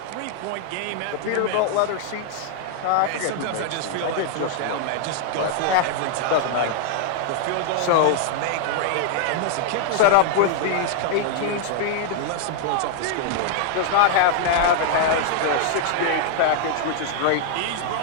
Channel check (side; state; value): both; different; correlation 0.00